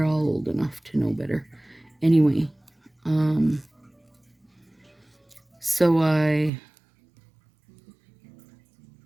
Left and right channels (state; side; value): drops out; left; at 6.5 s